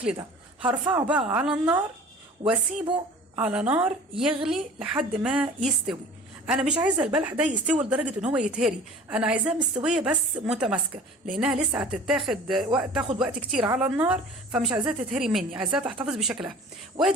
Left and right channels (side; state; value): both; normal; correlation 0.43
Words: ده. هرفعه بقى على النار واسيبه على نار يغلي لحد ما يستوي. انا مش عايزه البلح ده يستوي لدرجه ان هو يتهري، انا عايزاه مستويه بس متماسكه، لانها لسه تاخد وقت كتير على النار، فمش عايزاها تتهري مني، عايزاها تحتفظ بشكلها.